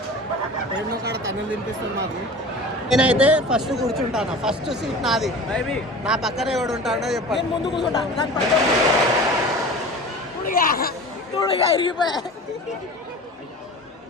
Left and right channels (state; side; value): normal; both; correlation 0.37